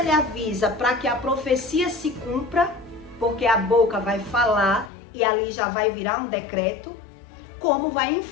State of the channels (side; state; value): right; drops out; at 4.9 s